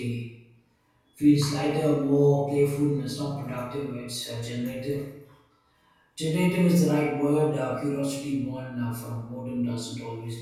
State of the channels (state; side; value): identical; both; correlation 1.00